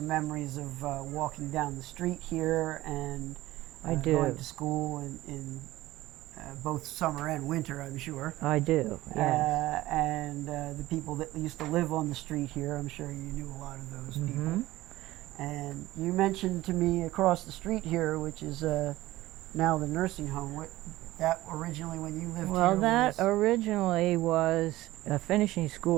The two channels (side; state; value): left; quieter; 17.0 dB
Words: memories of walking down the street here and I do. going to school in both summer and winter, I'm sure. I do, yes. And the people that used to live on the street here, I'm sure you knew a lot of those people. And you mentioned to me across the street here, which is now the nursing home. What that originally, when you lived Well, here, that was... originally was a finishing